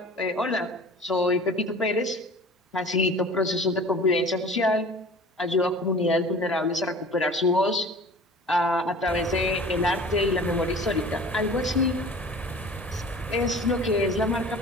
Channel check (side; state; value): both; normal; correlation 0.43